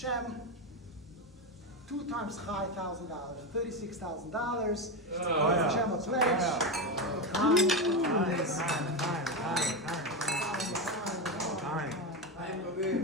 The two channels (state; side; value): normal; both; correlation 0.13